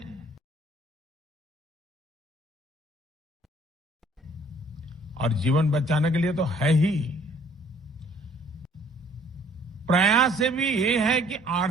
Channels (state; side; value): normal; both; correlation 0.58